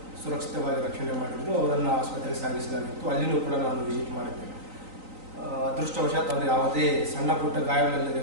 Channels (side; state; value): left; late; 3.9 ms